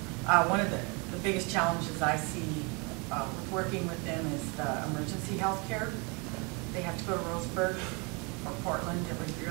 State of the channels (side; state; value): left; quieter; 30.8 dB